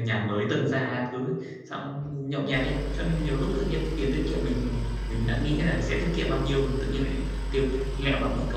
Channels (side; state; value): both; identical; correlation 1.00